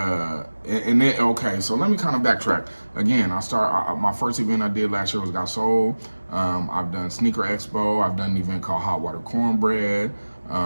And then, okay, so let me kind of backtrack. Again, my first event I did last year was Got Sold. I've done Sneaker Expo. I've done an event called Hot Water Cornbread.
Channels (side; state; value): both; inverted; correlation -1.00